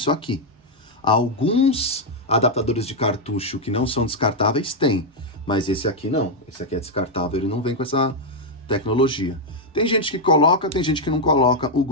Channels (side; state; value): both; normal; correlation 0.00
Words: aqui. Alguns adaptadores de cartucho que não são descartáveis têm, mas esse aqui não. Esse aqui é descartável, ele não vem com essa tecnologia. Tem gente que coloca, tem gente que não coloca o